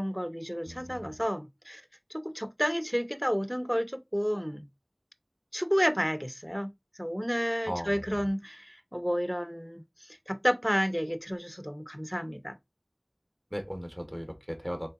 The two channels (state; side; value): identical; both; correlation 1.00